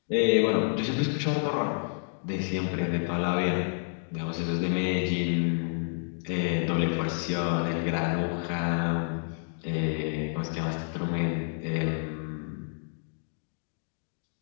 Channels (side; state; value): right; silent; 58 dB below the other